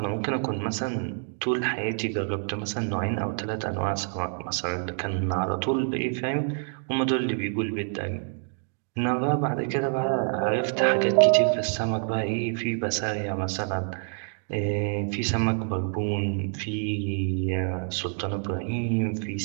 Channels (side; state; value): left; silent; 56 dB below the other